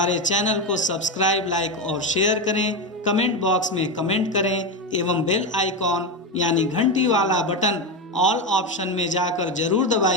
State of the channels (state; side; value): normal; both; correlation 0.13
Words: चैनल को सब्सक्राइब, लाइक और शेयर करें। कमेंट बॉक्स में कमेंट करें एवं बेल आइकॉन यानी घंटी वाला बटन ऑल ऑप्शन में जाकर जरूर